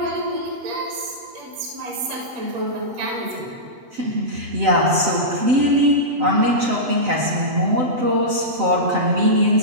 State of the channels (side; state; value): left; late; 7.8 ms